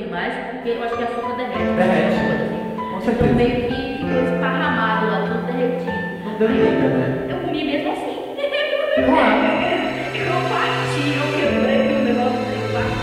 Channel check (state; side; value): identical; both; correlation 1.00